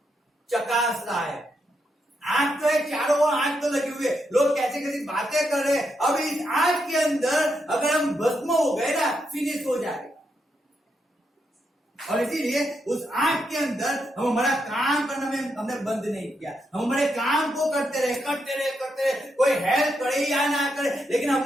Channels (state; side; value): normal; both; correlation 0.81